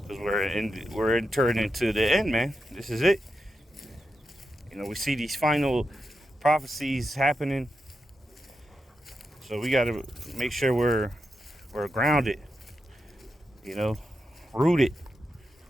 because we're entering into the end, man. This is it. You know, we see these final prophecies happening, so we got to make sure we're grounded, you know, rooted.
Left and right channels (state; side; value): normal; both; correlation 0.88